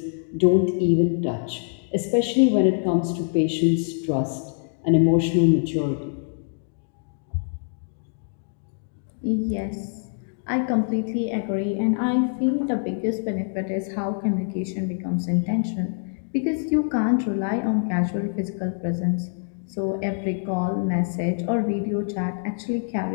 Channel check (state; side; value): silent; right; digital silence